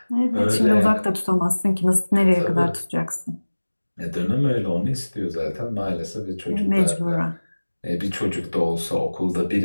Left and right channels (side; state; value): both; inverted; correlation -1.00